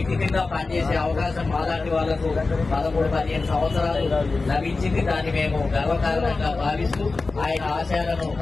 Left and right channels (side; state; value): right; quieter; 3.7 dB